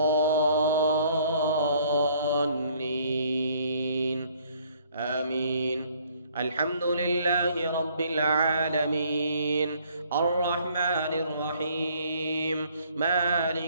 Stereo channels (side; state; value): both; inverted; correlation -0.61